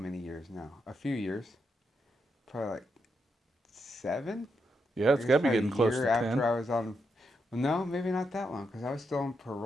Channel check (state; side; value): normal; both; correlation 0.82